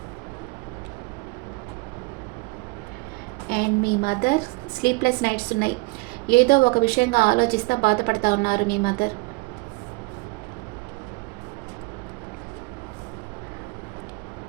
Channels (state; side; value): quieter; left; 25.5 dB